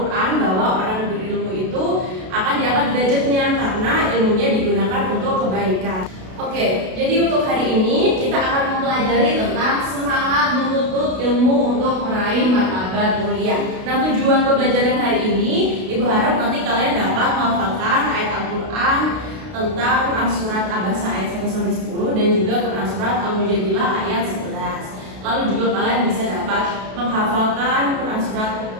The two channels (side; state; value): left; late; 32 ms